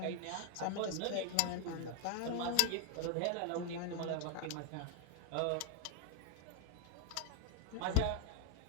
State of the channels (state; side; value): different; both; correlation 0.00